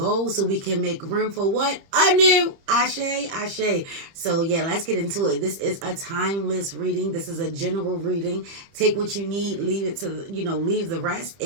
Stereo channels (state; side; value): late; left; 30 ms